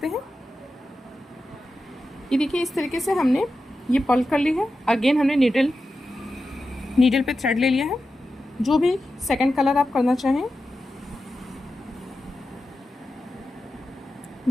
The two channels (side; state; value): both; normal; correlation 0.91